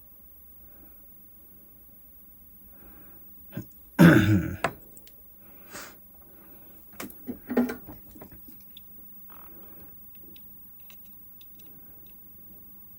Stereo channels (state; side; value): identical; both; correlation 1.00